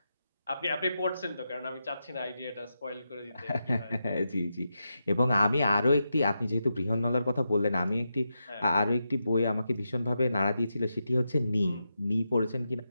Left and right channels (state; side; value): inverted; both; correlation -0.87